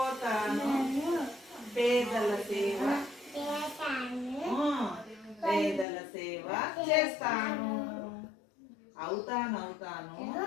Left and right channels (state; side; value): drops out; right; at 5.9 s